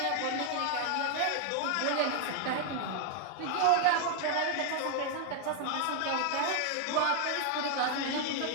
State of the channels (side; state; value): both; different; correlation 0.00